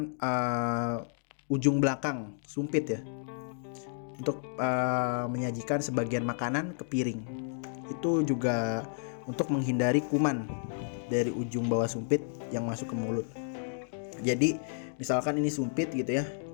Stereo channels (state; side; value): silent; right; digital silence